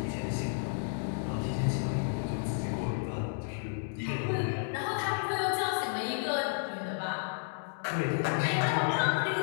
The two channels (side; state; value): right; silent; digital silence